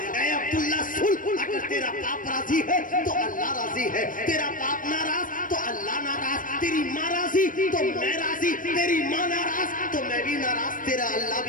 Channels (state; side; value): late; right; 0.39 ms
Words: اے عبداللہ سن، اگر تیرا باپ راضی ہے تو اللہ راضی ہے، تیرا باپ ناراض تو اللہ ناراض، تیری ماں راضی تو میں راضی، تیری ماں ناراض تو میں بھی ناراض، تیرا اللہ